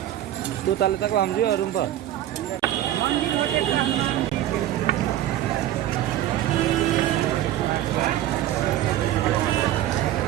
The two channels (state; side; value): quieter; left; 12.9 dB